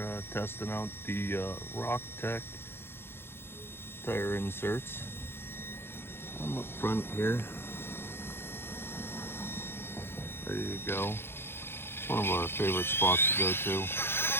testing out the Rock-tek tire inserts. I'm up front here, ready to go. It's one of our favorite spots to go to.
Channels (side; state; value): right; late; 0.11 ms